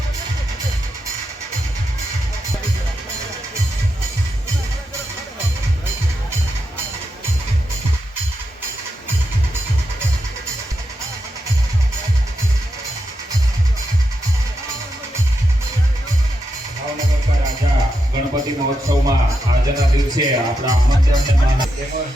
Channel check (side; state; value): both; normal; correlation 0.85